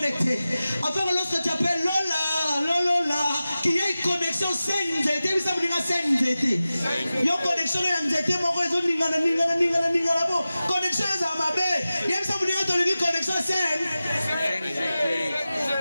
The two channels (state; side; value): inverted; both; correlation -0.95